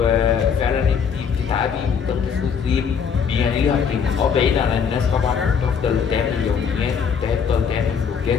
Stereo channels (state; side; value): quieter; right; 6.7 dB